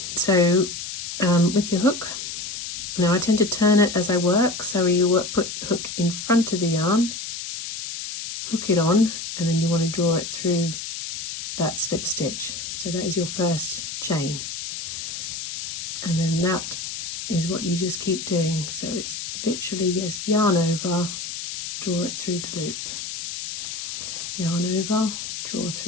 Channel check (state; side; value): noise; left; hiss, 7 dB below the sound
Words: So with your hook, now I tend to turn it as I work, so you put the hook in front of the yarn, hook it on, and then you want to draw it through that slip stitch. So that is your first chain, and then that is what you just keep doing. So it's literally just yarn over, draw it through the loop, yarn over, draw